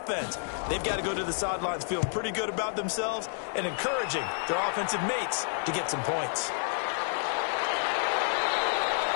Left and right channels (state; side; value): silent; right; digital silence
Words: They've got to go to the sidelines feeling pretty good about themselves and encouraging their offensive mates to get some points.